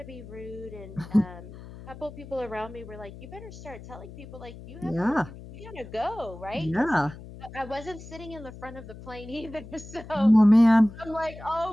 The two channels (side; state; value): left; noise; hum, 15 dB below the sound